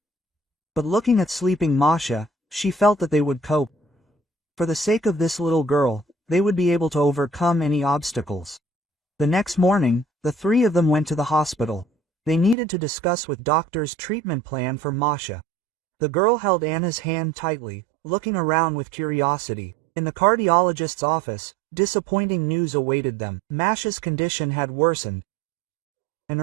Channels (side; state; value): left; drops out; at 12.6 s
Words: But looking at sleeping Masha, she felt that they would cope. For the sake of this little girl, they would be able to overcome any obstacles. The next morning, the three of them went to the hospital. They needed to discuss with doctors' treatment plan for Masha. The girl held Anna's hand tightly, looking around with curiosity. In the cardiologist's office, disappointing news awaited them. Masha's condition had worsened. An